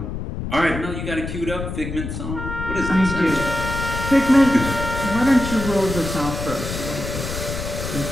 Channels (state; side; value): noise; left; rumble, 6 dB below the sound